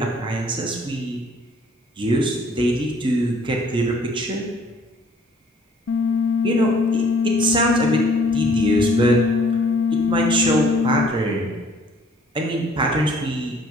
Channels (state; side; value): normal; both; correlation 0.58